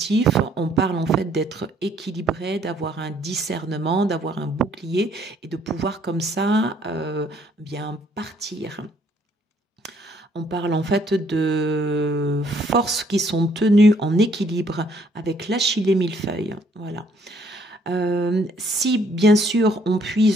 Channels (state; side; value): normal; both; correlation 0.65